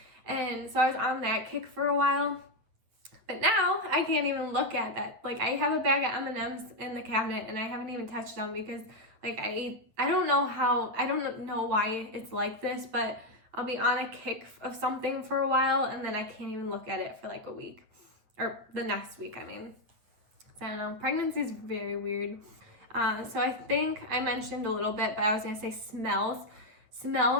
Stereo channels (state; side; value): late; left; 9.1 ms